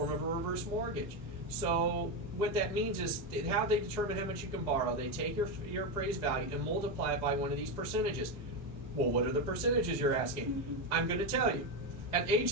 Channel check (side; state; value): both; normal; correlation 0.11